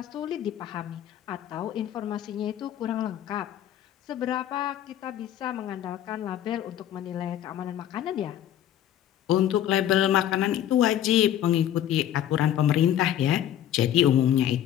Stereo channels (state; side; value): quieter; right; 11.2 dB